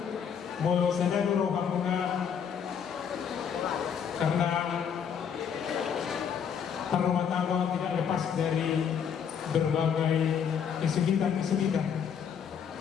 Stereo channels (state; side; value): quieter; right; 7.6 dB